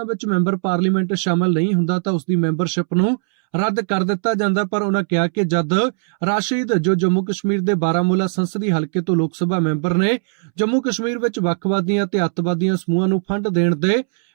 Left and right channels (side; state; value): left; silent; 66 dB below the other